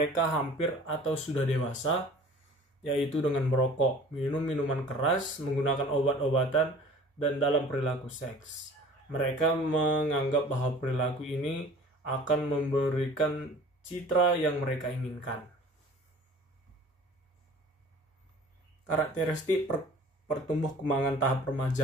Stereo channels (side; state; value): both; normal; correlation 0.46